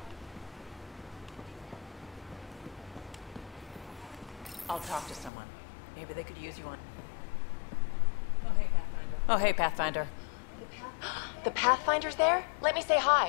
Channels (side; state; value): right; drops out; at 5.3 s